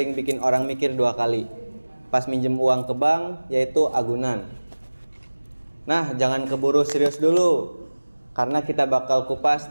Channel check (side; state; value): both; inverted; correlation -1.00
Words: bikin orang mikir dua kali pas minjem uang ke bank, yaitu agunan. Nah, jangan keburu serius dulu, karena kita bakal kupas